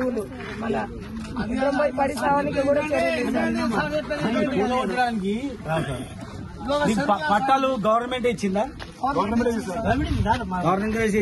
మళ్ళా పడి సావానికి కూడా కూలగొట్టడానికి పట్టాలు గవర్నమెంట్ ఇచ్చిందా? గవర్నమెంట్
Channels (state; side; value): identical; both; correlation 1.00